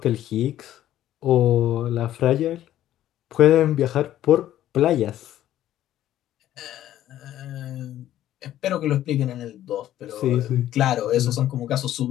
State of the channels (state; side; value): quieter; right; 12.7 dB